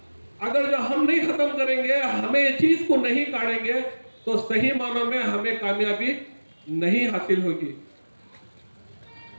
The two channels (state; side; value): inverted; both; correlation -1.00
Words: अगर जो हम नहीं खत्म करेंगे, हमें ये चीज को नहीं काटेंगे, तो सही मानों में हमें कामयाबी नहीं हासिल होगी।